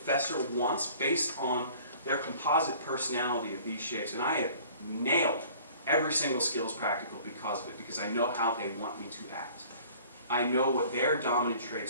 wants based on their composite personality of these shapes. And I have nailed every single skills practical because of it, because I know how they want me to act. I know what their dominant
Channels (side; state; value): both; inverted; correlation -0.50